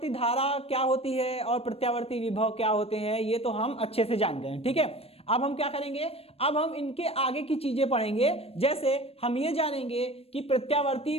धारा क्या होती है और प्रत्यावर्ती विभव क्या होते हैं ये तो हम अच्छे से जान गए हैं, ठीक है। अब हम क्या करेंगे, अब हम इनके आगे की चीजें पढ़ेंगे। जैसे हम ये जानेंगे कि प्रत्यावर्ती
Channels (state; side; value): late; right; 0.28 ms